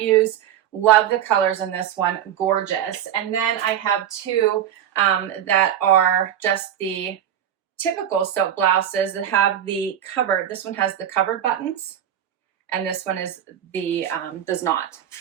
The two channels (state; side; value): quieter; left; 10.2 dB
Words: Love the colors in this one, gorgeous. And then I have two that are just the typical silk blouses that have the covered. This one has the covered buttons, and this one is the does not.